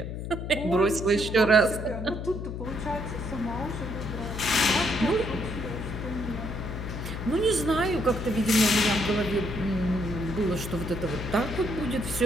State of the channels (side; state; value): left; noise; hum, 6 dB below the sound